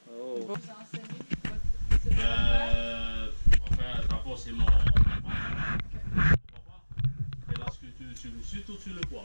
Oh. Vous enseignez votre... C'est Enfin, d'abord, c'est mon papa. Et là, surtout sur le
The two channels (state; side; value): inverted; both; correlation -1.00